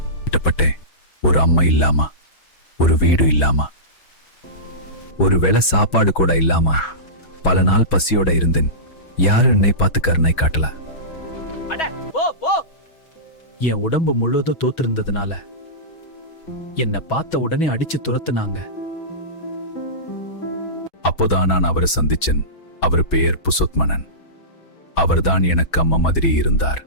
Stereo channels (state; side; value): late; right; 6.2 ms